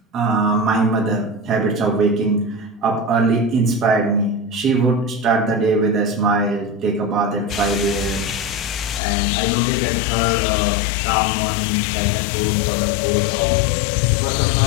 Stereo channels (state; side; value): drops out; right; at 9.0 s